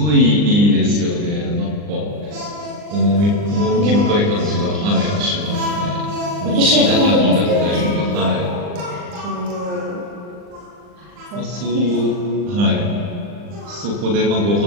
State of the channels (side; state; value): left; late; 39 ms